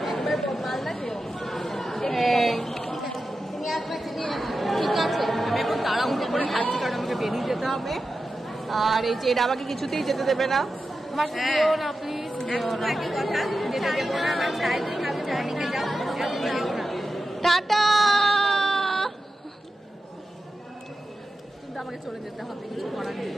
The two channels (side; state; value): both; normal; correlation 0.92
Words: ঠিক আছে, আমি এখন তাড়াহুড়ো করে খাচ্ছি কারণ আমাকে বেরিয়ে যেতে হবে। আর এই যে এটা আমাকে কিছুতেই যেতে দেবে না। টাটা। কিন্তু আমাকে চলে যেতে হবে, কিছু করার নেই।